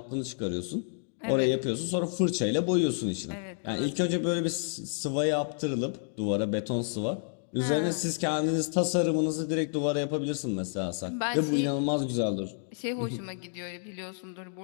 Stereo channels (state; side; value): silent; right; digital silence